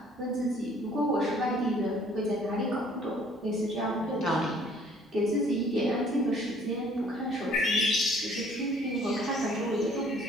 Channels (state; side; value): normal; both; correlation 0.58